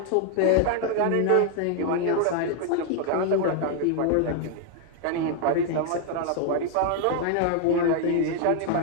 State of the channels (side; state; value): both; different; correlation 0.00